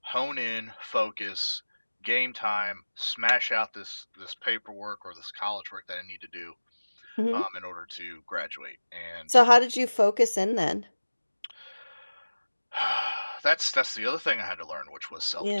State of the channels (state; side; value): inverted; both; correlation -1.00